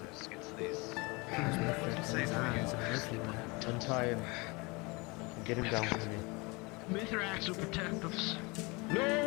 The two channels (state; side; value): quieter; right; 26.7 dB